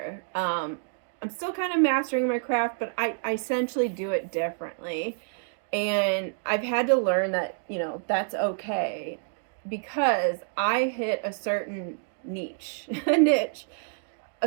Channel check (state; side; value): silent; left; digital silence